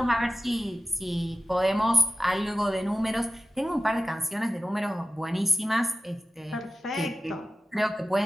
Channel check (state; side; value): normal; both; correlation 0.92